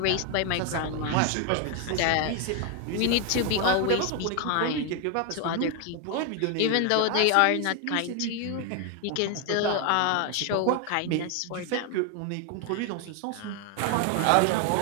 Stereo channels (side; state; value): both; different; correlation 0.01